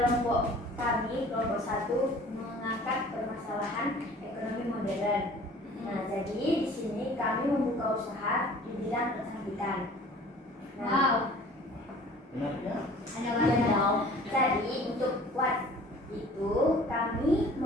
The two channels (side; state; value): both; normal; correlation 0.48